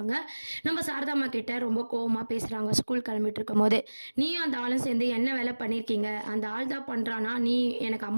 நம்ம சாரதாம்மா கிட்ட ரொம்ப கோவமாக பேசுகிறாங்க. ஸ்கூல் கிளம்பிட்டு இருக்கும் போது, நீயும் அந்த ஆளும் சேர்ந்து என்ன வேலை பண்ணியிருக்கீங்க? அந்த ஆள் தான் பண்ணுறானா? நீ எனக்கு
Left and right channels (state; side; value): inverted; both; correlation -1.00